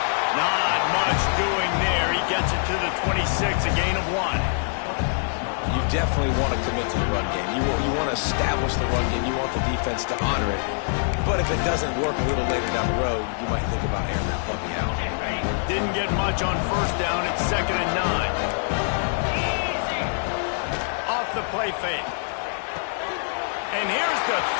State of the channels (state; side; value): silent; right; digital silence